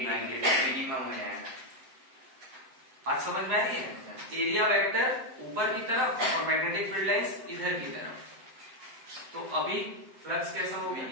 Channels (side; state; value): left; late; 7.8 ms